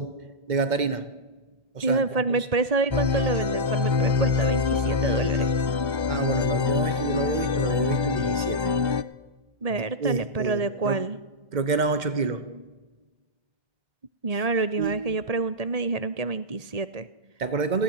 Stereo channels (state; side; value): late; left; 2.1 ms